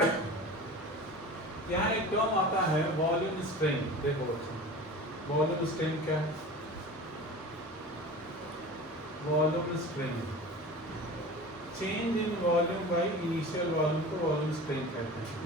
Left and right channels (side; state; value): both; normal; correlation 0.36